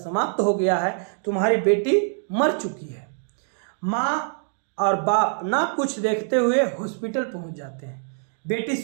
हो गया है, तुम्हारी बेटी मर चुकी है। माँ और बाप ना कुछ देखते हुए हॉस्पिटल पहुंच जाते हैं बेटी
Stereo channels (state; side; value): silent; left; 62 dB below the other